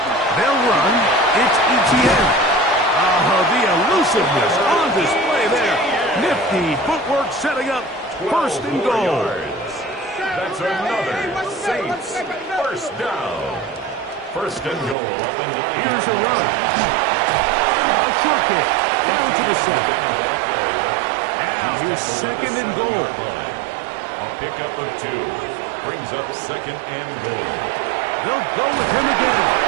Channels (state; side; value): drops out; left; at 15.0 s